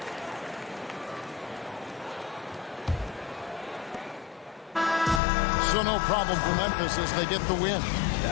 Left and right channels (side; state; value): right; drops out; at 5.2 s